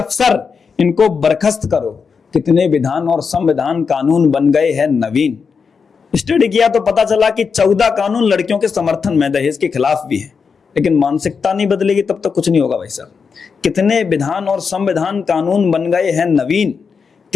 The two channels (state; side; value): quieter; right; 5.6 dB